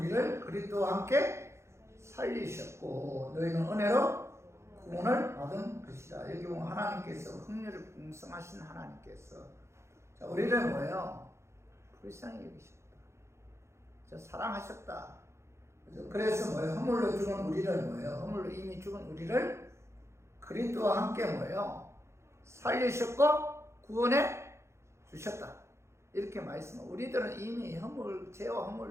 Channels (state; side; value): late; left; 0.13 ms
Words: 그리스도와 함께 살리셨고 너희는 은혜로 구원을 받은 것이다. 여기 보면 하나님께서 긍휼이 풍성하신 하나님께서 우리를 뭐예요? 불쌍히 여기셨다. 사랑하셨다. 그래서 뭐예요? 허물로 죽은 우리를 뭐예요? 허물로 이미 죽은 우리를 그리스도와 함께 뭐예요? 살리셨고 구원해 주셨다. 이렇게 말씀하고 우리들은 이미 죄와